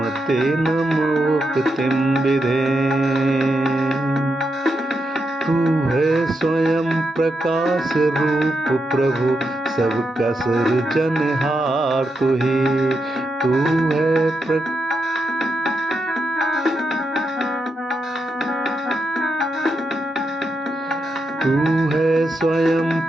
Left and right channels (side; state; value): both; normal; correlation 0.84